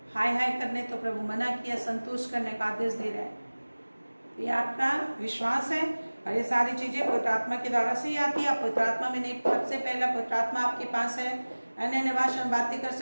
हाय हाय करने तो प्रभु मना किया, संतुष्ट करने का आदेश दे रहा है। ये आपका विश्वास है और ये सारी चीजें पवित्र आत्मा के द्वारा से ही आती है। आप पवित्र आत्मा में नहीं, सबसे पहला पवित्र आत्मा आपके पास है, अन्य भाषा में बातें कर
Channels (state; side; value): inverted; both; correlation -1.00